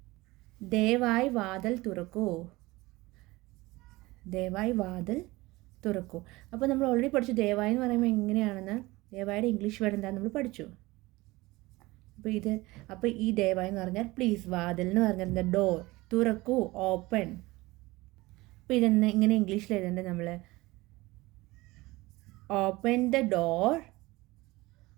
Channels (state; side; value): quieter; left; 20.8 dB